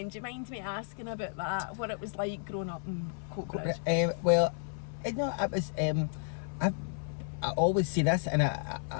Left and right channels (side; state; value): right; silent; 56 dB below the other